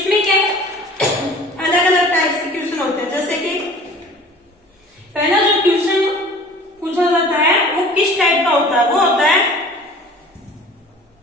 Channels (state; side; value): normal; both; correlation 0.45